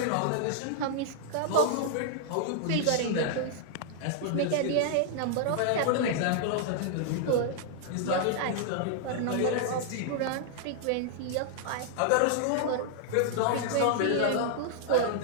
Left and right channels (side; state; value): both; different; correlation -0.01